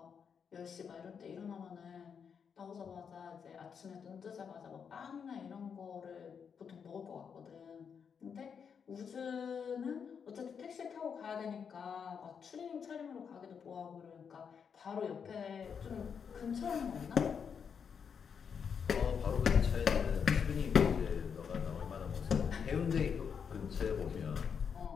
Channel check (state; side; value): quieter; right; 6.8 dB